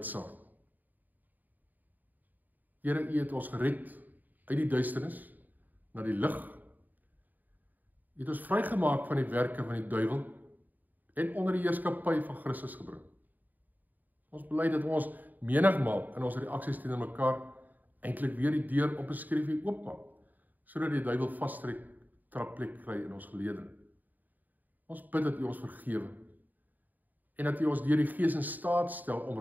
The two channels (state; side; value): late; left; 0.085 ms